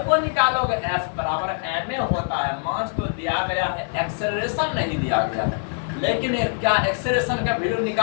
को निकालोगे F बराबर ma होता है, मास तो दिया गया है, एक्सेलरेशन नहीं दिया गया है। लेकिन क्या एक्सेलरेशन का वैल्यू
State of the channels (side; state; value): right; silent; digital silence